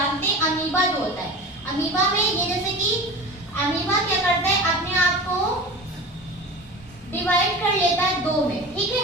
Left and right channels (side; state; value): both; normal; correlation 0.33